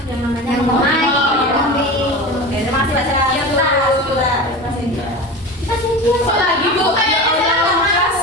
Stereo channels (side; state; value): both; normal; correlation 0.29